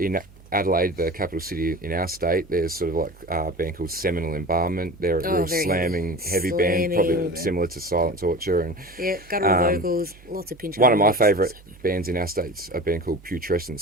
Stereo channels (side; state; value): both; normal; correlation 0.35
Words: Adelaide, the capital city in our state. There's sort of like a band called Seminal Embalmment. They're a real very slamming, heavy slamming. band, probably similar to Silent Torture. And Yeah, guttural vocals, lots of pinch. one of my harmonics. favourite bands in our state's a band called Putrescent